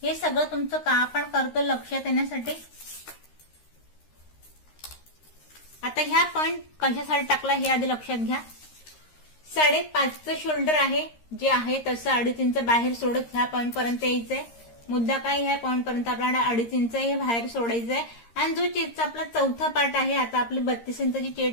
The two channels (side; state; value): right; late; 13 ms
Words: हे सगळं तुमचं का आपण करतो लक्षात येण्यासाठी. आता ह्या पॉइंट कशासाठी टाकला हे आधी लक्षात घ्या. 5.5चं शोल्डर आहे जे आहे तसं 2.5 इंच बाहेर सोडत ह्या पॉइंट पर्यंत यायचंय. मुद्दा काय, ह्या पॉइंट पर्यंत आपल्याला 2.5 इंच हे बाहेर सोडायचंय. आणि जो चेस्टचा आपला चौथा पार्ट आहे, आता आपली 32 इंचाची